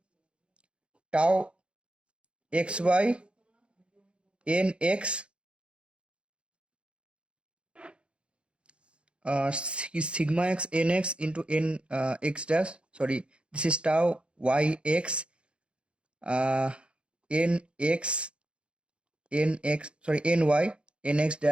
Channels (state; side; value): late; left; 0.057 ms